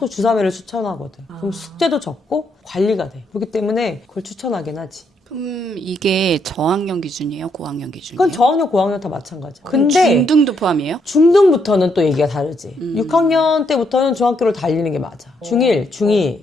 주 3회를 추천하거든. 그럼 숙제도 적고 관리가 돼. 그렇기 때문에 그걸 추천하긴 하지. 그럼 이게 저학년 기준이에요? 고학년 기준이에요? 그건 저학년, 고학년 다 마찬가지야. 근데 중등도 포함이에요? 중등부터는 또 얘기가 다르지. 6학년 때부터는 중학교를 달리는 게 맞아. 중1, 중2,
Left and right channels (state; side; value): normal; both; correlation 0.75